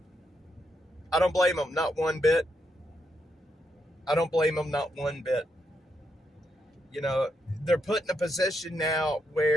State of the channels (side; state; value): both; normal; correlation 0.80